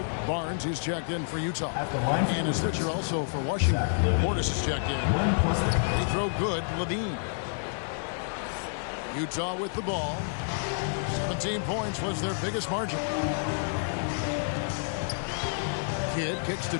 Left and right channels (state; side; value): silent; right; digital silence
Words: Barnes is checked in for Utah. And a switcher also for Washington. Portis is checked in. Free throw good, Levine. Utah with the ball. 17 points was their biggest margin. Kidd kicks to